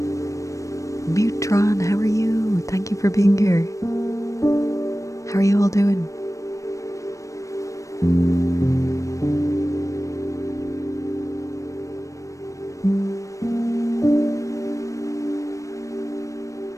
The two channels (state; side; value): late; right; 0.15 ms